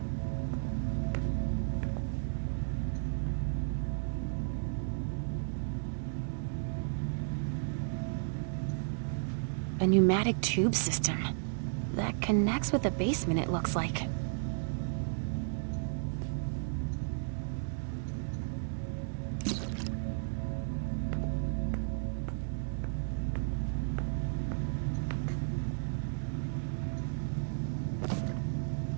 A pneumatic tube system that connects with the basement, it looks like.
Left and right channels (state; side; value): silent; left; digital silence